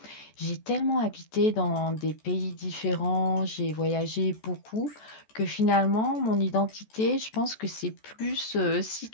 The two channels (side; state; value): right; late; 14 ms